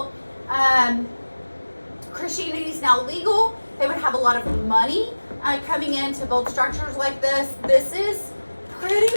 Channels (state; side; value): inverted; both; correlation -1.00